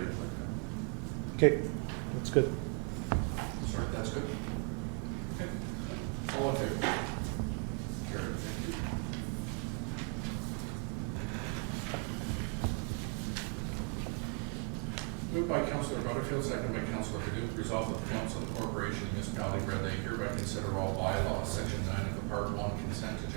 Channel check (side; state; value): left; quieter; 35.5 dB